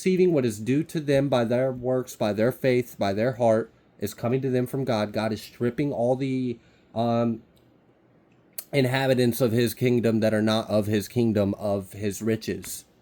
what is due to them by their works, by their faith, by their heart, is coming to them from God. God is stripping all the inhabitants of his kingdom that are not of his kingdom of his riches.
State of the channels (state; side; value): identical; both; correlation 1.00